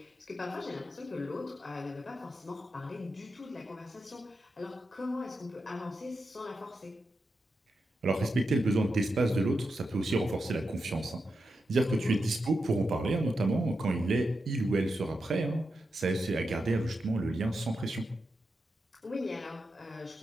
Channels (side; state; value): both; normal; correlation 0.87